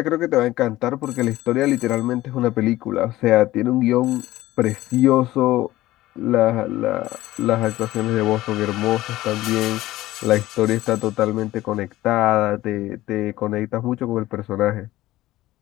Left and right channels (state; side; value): quieter; right; 16.4 dB